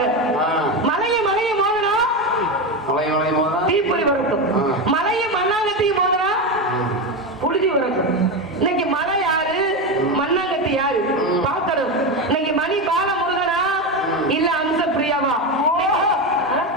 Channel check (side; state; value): both; normal; correlation 0.15